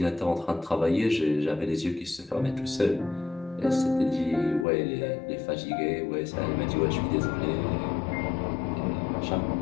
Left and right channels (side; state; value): right; drops out; at 4.7 s